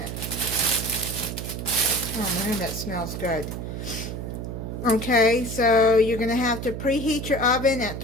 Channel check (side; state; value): right; noise; hum, 6 dB below the sound